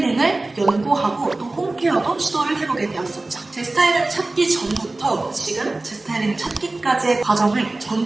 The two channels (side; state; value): left; quieter; 3.0 dB